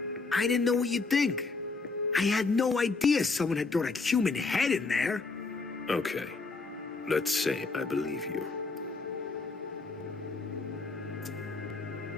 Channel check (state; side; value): quieter; right; 4.0 dB